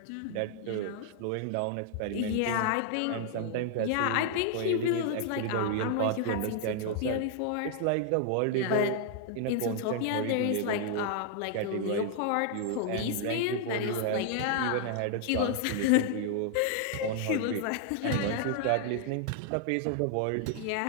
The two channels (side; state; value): both; different; correlation 0.00